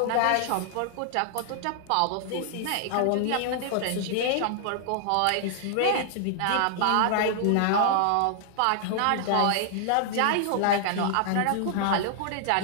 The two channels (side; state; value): both; different; correlation -0.01